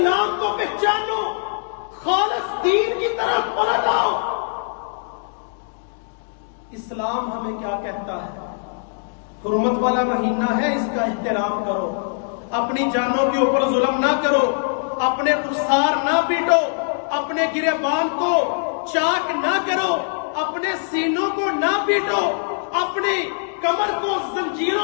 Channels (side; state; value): right; silent; digital silence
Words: کو پہچانو، خالص دین کی طرف پلٹ آؤ۔ اسلام ہمیں کیا کہتا ہے؟ حرمت والا مہینہ ہے، اس کا احترام کرو، اپنی جانوں کے اوپر ظلم نہ کرو، اپنے رخسار نہ پیٹو، اپنے گریبان کو چاک نہ کرو، اپنے سینوں کو نہ پیٹو، اپنی کمر کو